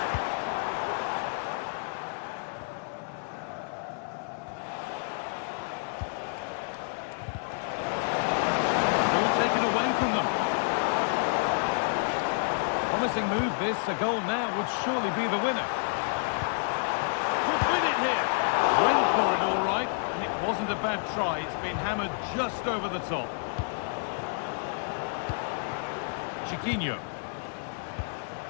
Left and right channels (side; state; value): right; silent; digital silence